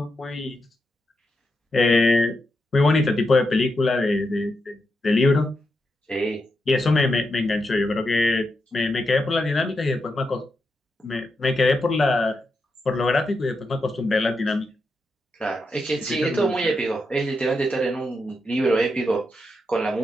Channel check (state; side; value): normal; both; correlation 0.85